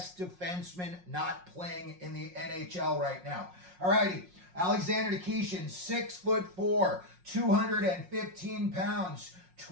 defenseman not playing in the NHL right now. Alrighty, Alexander Nikishin, 6'4", 215 pounds,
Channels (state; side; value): late; left; 5.5 ms